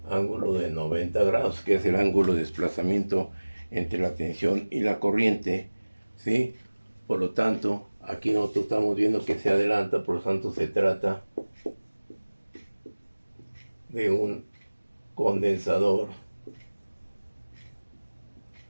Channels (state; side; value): inverted; both; correlation -1.00